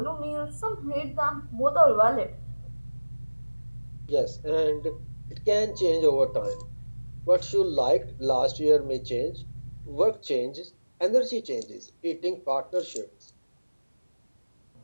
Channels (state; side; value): inverted; both; correlation -1.00